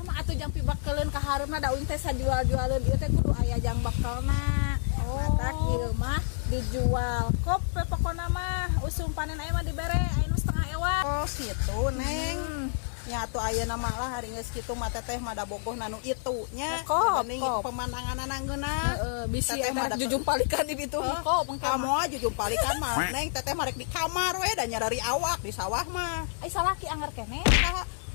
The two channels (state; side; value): silent; right; digital silence